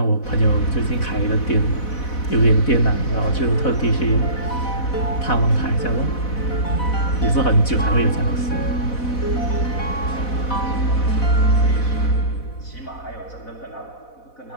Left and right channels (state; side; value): late; right; 4.1 ms